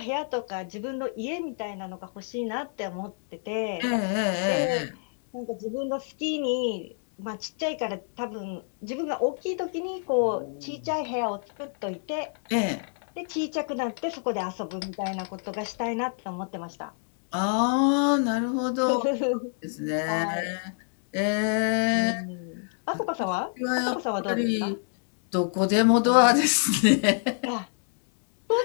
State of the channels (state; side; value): silent; right; 60 dB below the other